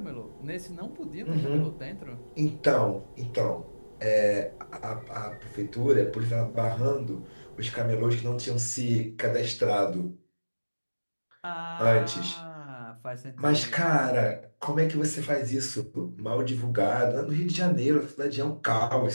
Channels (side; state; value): both; inverted; correlation -1.00